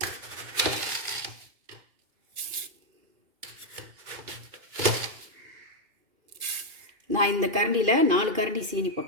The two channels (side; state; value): left; late; 2.5 ms